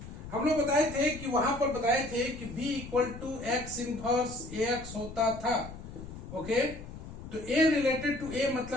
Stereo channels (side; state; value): left; noise; rumble, 12 dB below the sound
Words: हम लोग बताए थे कि वहां पर बताए थे कि B equal to X inverse AX होता था, ओके। तो A रिलेटेड टू A